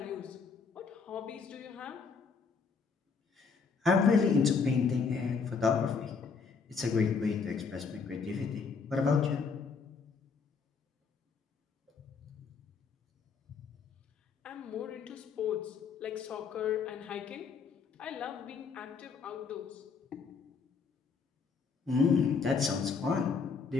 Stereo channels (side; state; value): right; quieter; 5.3 dB